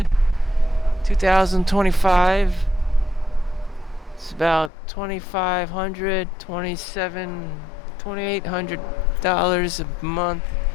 2025. It's about $2,500, $2,800 a month.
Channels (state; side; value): drops out; right; at 4.7 s